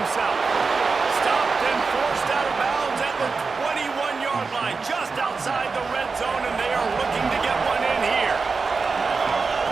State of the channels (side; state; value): left; quieter; 4.5 dB